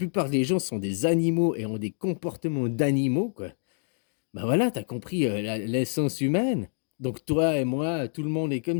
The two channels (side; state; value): right; silent; 60 dB below the other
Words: des gens sont des animaux et ont des comportements d'animaux, quoi. Bah, voilà, tu as compris, la l'essence humaine. Donc toi et moi, tout le monde est